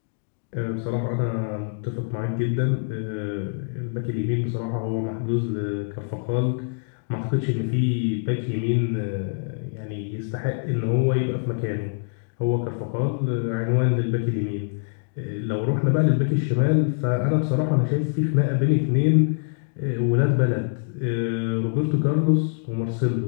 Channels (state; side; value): silent; right; digital silence